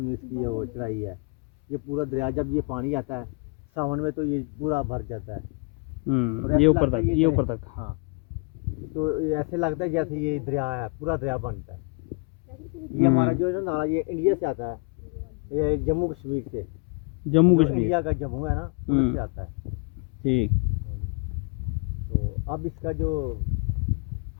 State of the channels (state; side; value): quieter; right; 32.7 dB